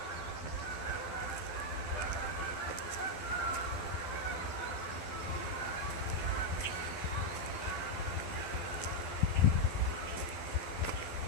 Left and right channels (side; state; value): right; late; 12 ms